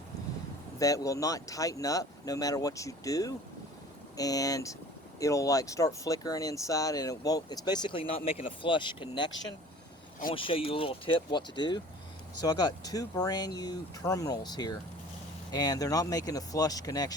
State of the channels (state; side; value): normal; both; correlation 0.46